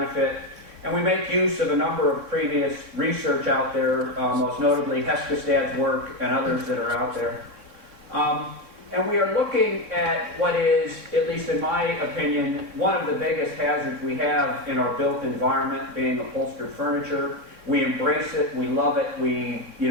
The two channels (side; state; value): left; late; 3.6 ms